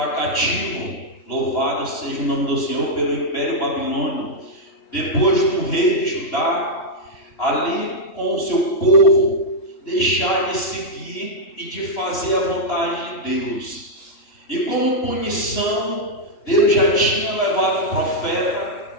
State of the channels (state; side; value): late; right; 2.9 ms